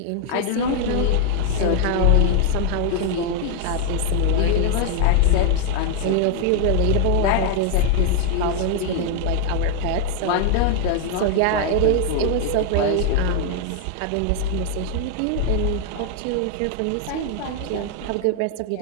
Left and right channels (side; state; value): both; different; correlation 0.00